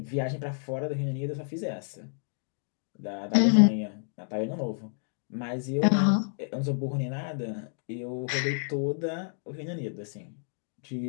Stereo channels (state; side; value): silent; right; digital silence